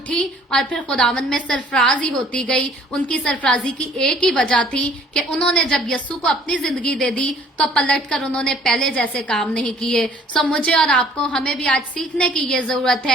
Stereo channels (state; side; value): normal; both; correlation 0.56